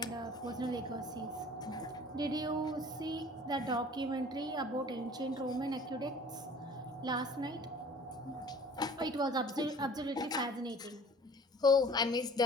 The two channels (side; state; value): both; normal; correlation 0.47